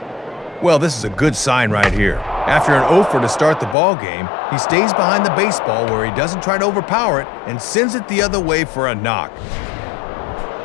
Well, this is a good sign right here. After an 0-for to start the ball game, he stays behind the baseball where he doesn't try to overpower it and sends it the other way for a knock.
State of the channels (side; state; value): right; drops out; at 3.8 s